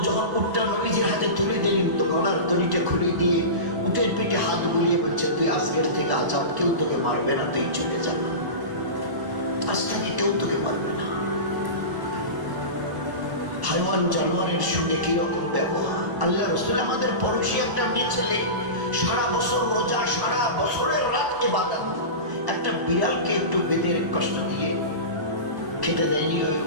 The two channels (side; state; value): left; late; 1.0 ms